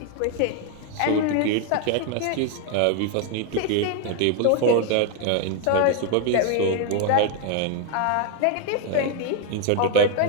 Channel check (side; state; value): both; different; correlation 0.01